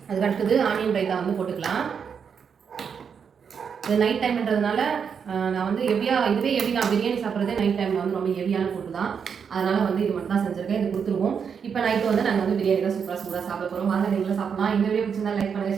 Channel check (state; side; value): quieter; left; 6.7 dB